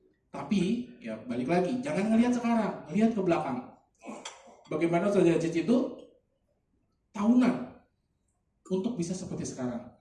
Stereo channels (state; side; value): identical; both; correlation 1.00